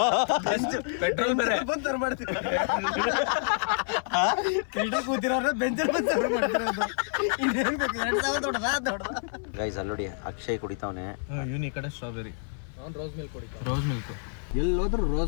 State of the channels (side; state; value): right; silent; 59 dB below the other